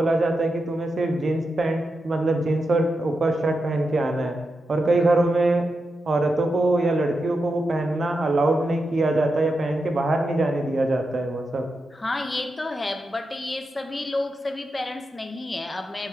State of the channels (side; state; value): both; normal; correlation 0.88